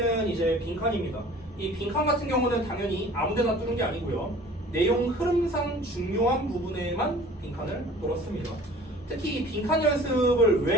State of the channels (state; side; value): normal; both; correlation 0.47